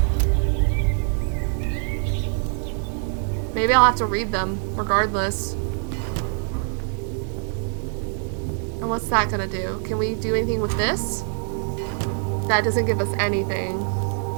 Maybe I'll have to read them regardless. And what's that gonna do? Can we do anything with this? That doesn't give us anything.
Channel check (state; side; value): silent; left; 63 dB below the other